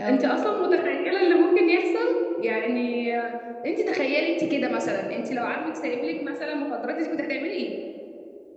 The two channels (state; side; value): identical; both; correlation 1.00